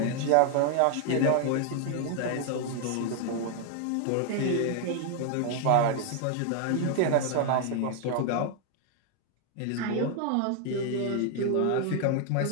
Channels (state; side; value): different; both; correlation 0.00